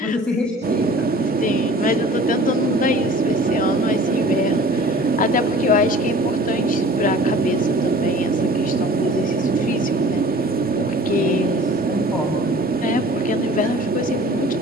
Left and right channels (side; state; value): both; normal; correlation 0.46